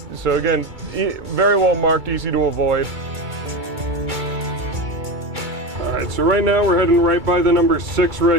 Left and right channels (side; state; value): left; late; 2.3 ms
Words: So again, very well marked, easy to avoid. All right, so right now we're heading right by the number 6